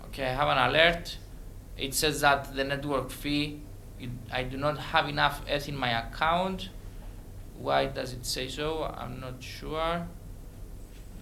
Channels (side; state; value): both; identical; correlation 1.00